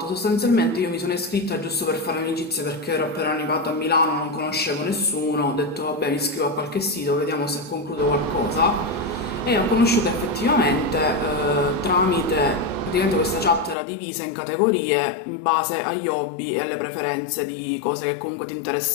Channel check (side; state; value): right; drops out; at 13.8 s